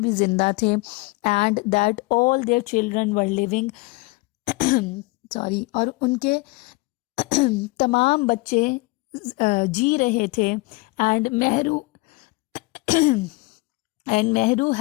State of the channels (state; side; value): quieter; right; 24.1 dB